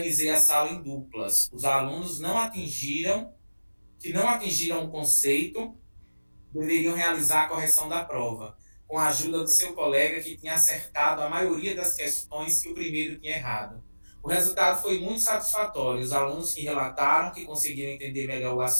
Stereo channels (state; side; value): inverted; both; correlation -1.00